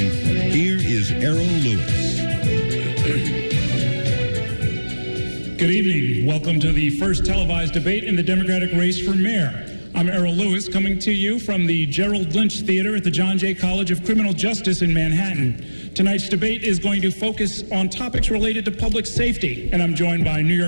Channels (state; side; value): inverted; both; correlation -1.00